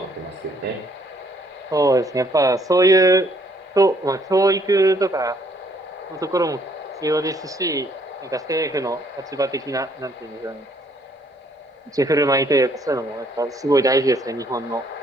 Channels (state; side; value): normal; both; correlation 0.66